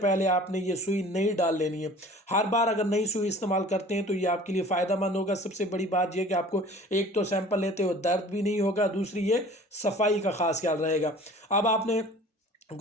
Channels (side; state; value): both; normal; correlation 0.46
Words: आपने ये सुई नहीं डाल लेनी है। हर बार अगर नई सुई इस्तेमाल करते हैं तो ये आपके लिए फ़ायदेमंद होगा। सबसे बड़ी बात यह कि आपको एक तो सैंपल लेते हो दर्द भी नहीं होगा, दूसरी ये सफाई का ख़ास ख्याल रहेगा। अब आपने